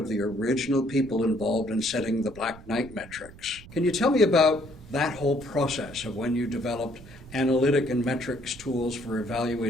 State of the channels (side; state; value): right; noise; rumble, 19 dB below the sound